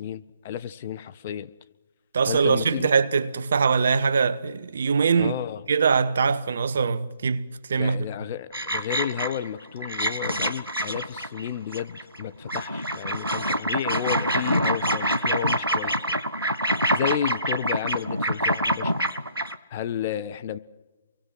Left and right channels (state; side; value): inverted; both; correlation -0.65